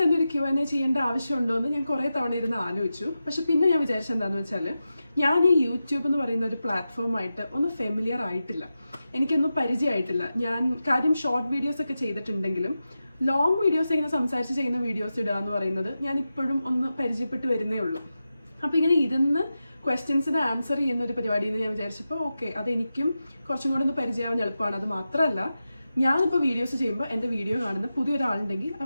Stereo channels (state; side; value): inverted; both; correlation -0.92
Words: തന്നെ ഒരു Q&A ചെയ്യേണ്ട ആവശ്യമുണ്ടോ എന്ന് ഞാൻ കുറേ തവണ ഇരുന്ന് ആലോചിച്ചു. പക്ഷെ പിന്നെ ഞാൻ വിചാരിച്ചത് എന്താണെന്ന് വെച്ചാൽ ഞാൻ ഈ യൂട്യൂബ് എന്ന് പറയുന്ന ഒരു പ്ലാറ്റ്ഫോമായിട്ട് ഒന്ന് ഫെമിലിയർ ആയിട്ടില്ല, എനിക്കൊന്നും പരിചയമായിട്ടില്ല. ഞാൻ കാര്യം ഷോർട്ട് വീഡിയോസ് ഒക്കെ ചെയ്തിട്ടുണ്ടെങ്കിലും ലോങ് വീഡിയോസ് ഇങ്ങനെ സംസാരിച്ച് ചെയ്യുന്ന വീഡിയോസ് ഇടുക എന്ന് പറയുന്നത് ഞാൻ ഇപ്പോഴും ഒന്ന് പരിചയപ്പെട്ട് വരുന്നേ ഉള്ളൂ. അപ്പോൾ ഇങ്ങനെ ഇരുന്ന് ക്വസ്റ്റ്യൻസിന് ആൻസർ ചെയ്യുന്ന ഒരു പരിപാടി എന്ന് ഞാൻ വിചാരിച്ചപ്പോൾ ഓക്കെ, അതെനിക്കും കുറച്ചും കൂടെ ഒന്ന് പരിചയമാവാൻ എളുപ്പമാണ്. അത് മാത്രമല്ല, ഞാനിപ്പോൾ വീഡിയോസ് ചെയ്യുമ്പോൾ എൻ്റെ വീഡിയോ കാണുന്ന പുതിയൊരാളുണ്ടെങ്കിൽ